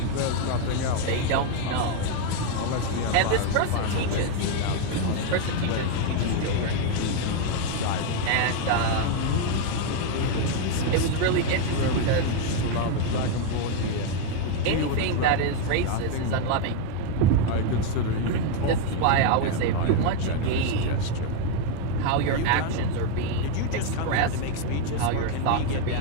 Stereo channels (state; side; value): different; both; correlation 0.01